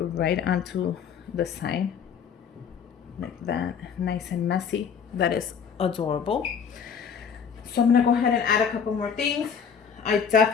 onto the sign like that, nice and messy. That is adorable. So I'm gonna go ahead and add a couple more things. I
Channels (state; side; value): quieter; right; 7.0 dB